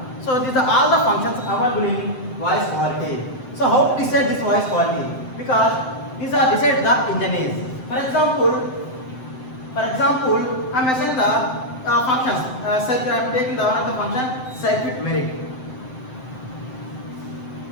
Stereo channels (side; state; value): right; late; 7.8 ms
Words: So these are all the functions available in voice quality. So how to decide this voice quality? Because these are decided the engineers. For example, I am assigning the functions. I am taking the one of the function circuit merit.